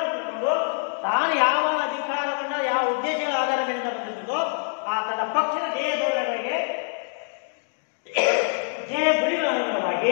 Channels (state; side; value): silent; right; digital silence